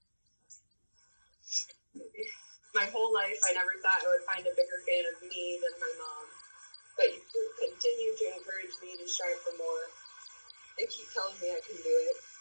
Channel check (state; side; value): inverted; both; correlation -1.00